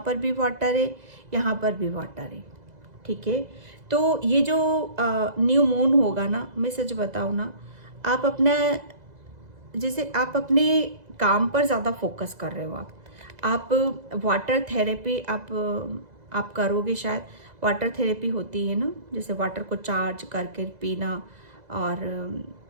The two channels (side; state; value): left; late; 2.0 ms